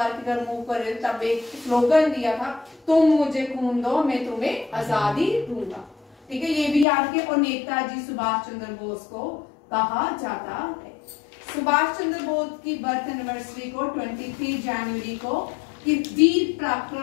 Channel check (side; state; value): right; drops out; at 6.9 s